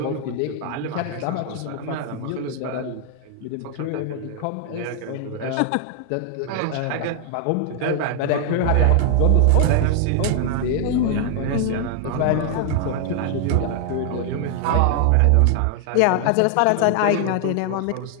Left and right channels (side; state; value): both; different; correlation 0.00